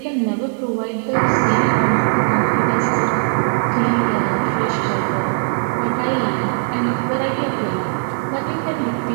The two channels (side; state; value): left; silent; digital silence